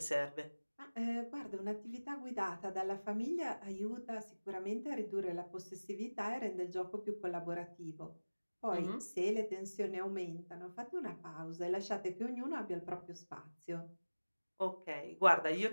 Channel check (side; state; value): both; inverted; correlation -1.00